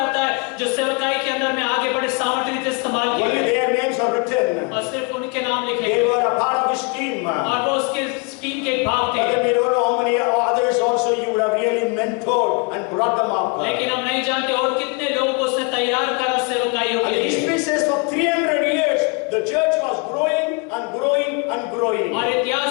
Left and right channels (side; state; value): right; quieter; 31.6 dB